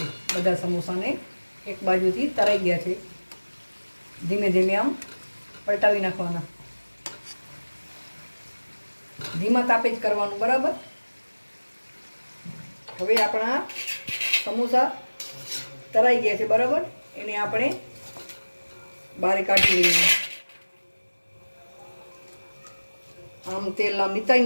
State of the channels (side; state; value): both; inverted; correlation -1.00